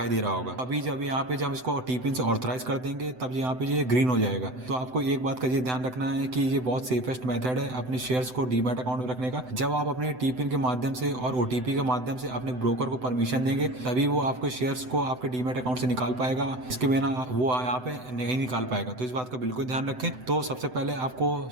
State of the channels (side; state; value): left; late; 7.9 ms